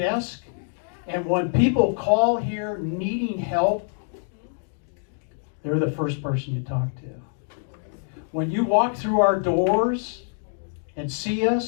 And when people call here needing help, they're the first person you talk to. When you walk through our doors and see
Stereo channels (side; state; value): right; silent; digital silence